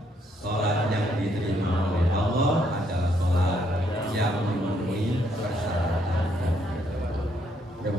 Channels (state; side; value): normal; both; correlation 0.72